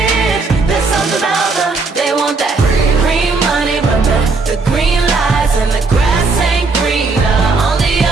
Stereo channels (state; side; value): quieter; left; 4.0 dB